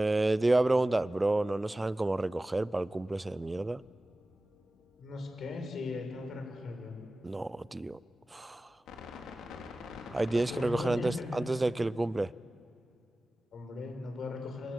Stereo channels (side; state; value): both; normal; correlation 0.96